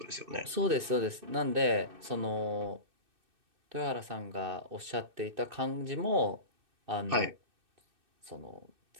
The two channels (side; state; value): left; late; 2.6 ms